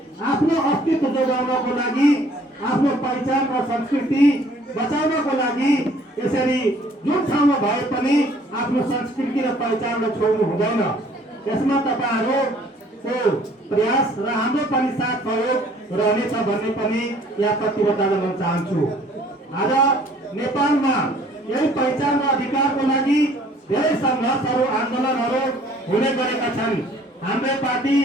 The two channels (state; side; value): normal; both; correlation 0.57